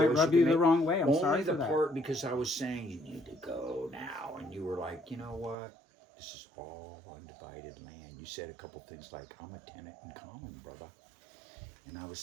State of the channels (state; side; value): drops out; left; at 5.6 s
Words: choice rub you you can the make. wrong way. I'm Only sorry the for that. part because I was saying you need to go now, and you were like, you know what? This is all undivided land. You said a couple things like, "I'm a tenant in common, brother," and I